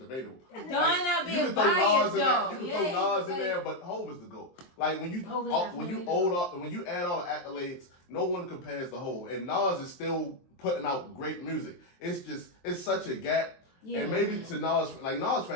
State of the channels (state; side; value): late; right; 23 ms